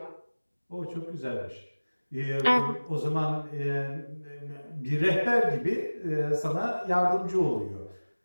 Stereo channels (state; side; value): inverted; both; correlation -1.00